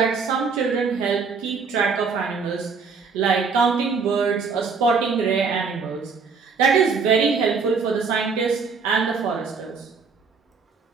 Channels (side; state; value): left; quieter; 5.1 dB